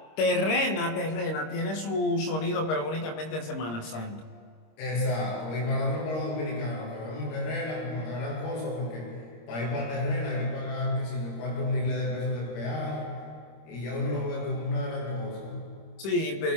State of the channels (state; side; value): late; right; 26 ms